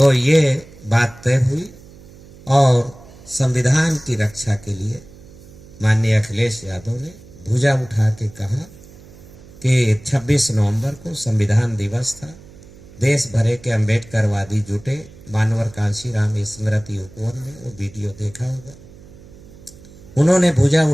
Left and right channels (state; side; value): noise; right; hum, 21 dB below the sound